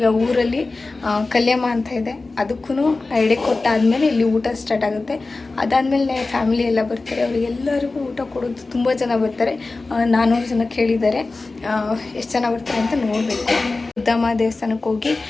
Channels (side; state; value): right; quieter; 3.5 dB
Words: ಊರಲ್ಲಿ ಕಲ್ಯಾಮ ಅಂತ ಇದೆ, ಅದಕ್ಕೂ ಎಡೆ ಕೊಟ್ಟಾದಮೇಲೆ ಇಲ್ಲಿ ಊಟ ಸ್ಟಾರ್ಟ್ ಆಗುತ್ತೆ. ಅದಾದಮೇಲೆ ಫ್ಯಾಮಿಲಿ ಎಲ್ಲ ಬರ್ತಾರೆ, ಅವರಿಗೆಲ್ಲರಿಗೂ ಊಟ ಕೊಡೋದು. ತುಂಬ ಜನ ಬರ್ತಾರೆ, 400 ಜನ ಕೇಳಿದ್ದಾರೆ. ಎಷ್ಟು ಜನ ಬರ್ತಾರೆ ಅಂತ ನೋಡಬೇಕು. ಪುರದಮ್ಮ ದೇವಸ್ಥಾನಕ್ಕೆ ಹೋಗಿ